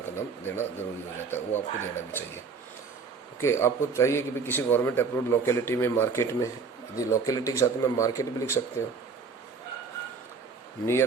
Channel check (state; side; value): quieter; left; 5.2 dB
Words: का नाम देना ज़रूरी हो जाता है, वो आपको देना भी चाहिए. ओके, आपको चाहिए कि भाई किसी गवर्नमेंट अप्रूव्ड लोकेलिटी में, मार्केट में, यदि लोकेलिटी के साथ में मार्केट भी लिख सकते हो.